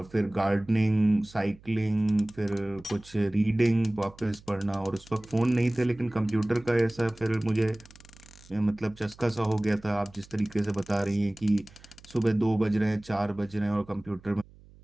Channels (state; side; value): noise; right; hum, 24 dB below the sound